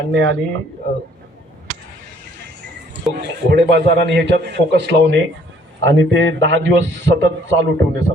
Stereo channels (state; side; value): normal; both; correlation 0.61